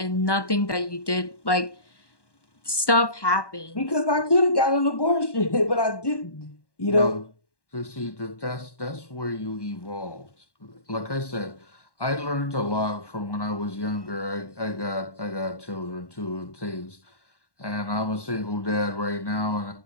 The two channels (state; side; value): late; right; 1.1 ms